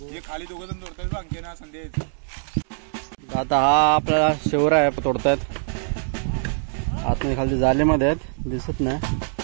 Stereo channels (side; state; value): left; silent; digital silence